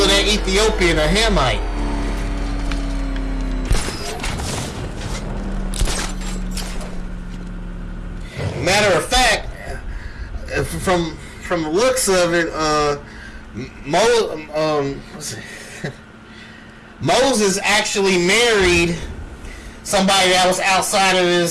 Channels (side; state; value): both; identical; correlation 1.00